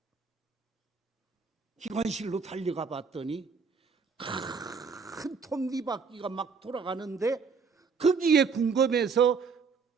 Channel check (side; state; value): left; quieter; 5.4 dB